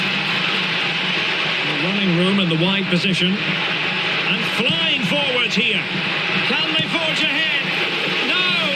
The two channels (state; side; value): identical; both; correlation 1.00